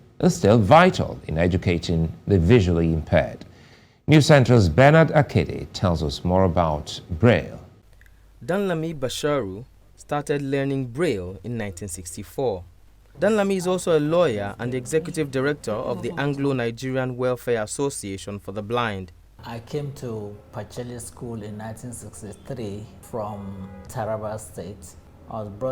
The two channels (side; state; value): both; identical; correlation 1.00